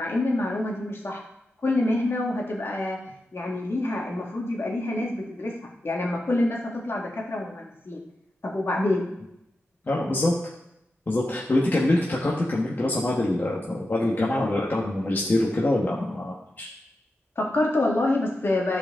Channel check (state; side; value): normal; both; correlation 0.89